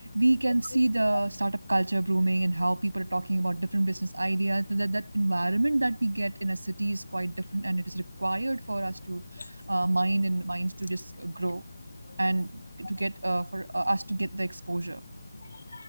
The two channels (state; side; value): inverted; both; correlation -1.00